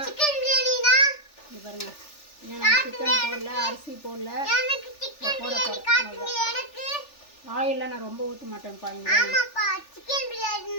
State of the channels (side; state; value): right; late; 3.4 ms